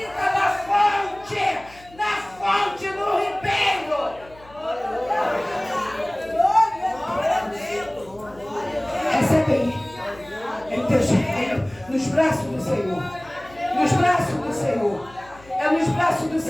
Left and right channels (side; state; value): left; noise; hum, 24 dB below the sound